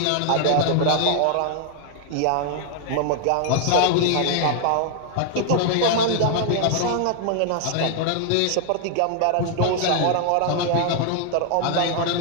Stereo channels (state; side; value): different; both; correlation 0.00